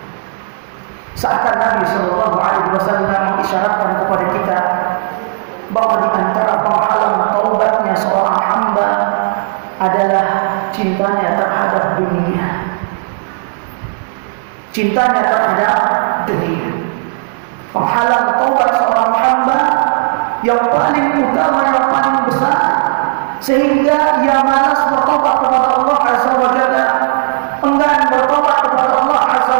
seakan Nabi sallallahu alaihi wasallam mengisyaratkan kepada kita bahwa di antara penghalang taubatnya seorang hamba adalah cintanya terhadap dunia. Cintanya terhadap dunia. Penghalang taubat seorang hamba yang paling utama, yang paling besar, sehingga ia malas bertobat kepada Allah Azza wa Jalla, enggan bertobat kepada Allah Azza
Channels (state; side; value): silent; left; 65 dB below the other